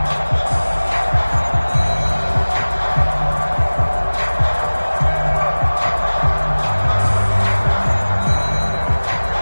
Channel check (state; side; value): inverted; both; correlation -1.00